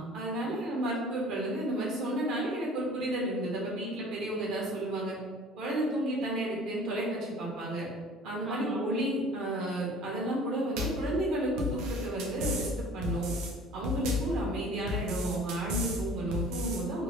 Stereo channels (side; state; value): both; normal; correlation 0.47